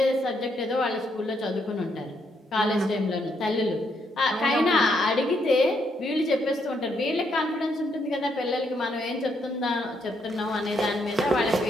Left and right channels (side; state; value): both; normal; correlation 0.75